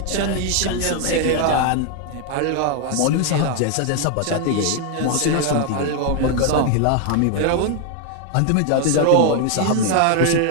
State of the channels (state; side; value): different; both; correlation 0.01